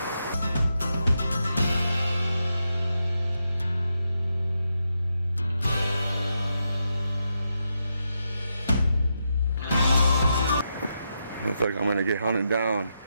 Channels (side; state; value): both; inverted; correlation -0.84